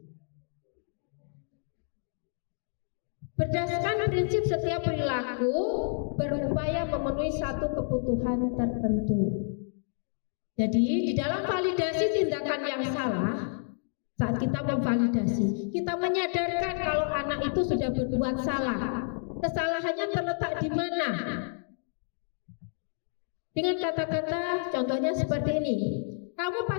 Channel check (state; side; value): silent; right; digital silence